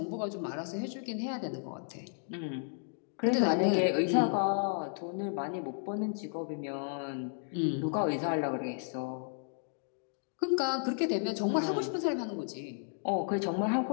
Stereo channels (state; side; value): silent; right; digital silence